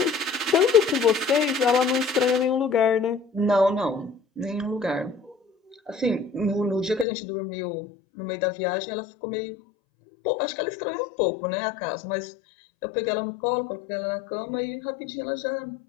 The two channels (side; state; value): right; drops out; at 7.1 s